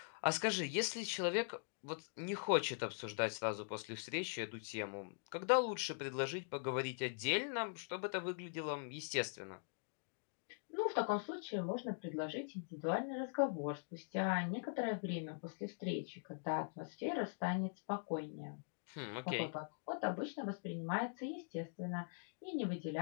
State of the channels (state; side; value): silent; right; digital silence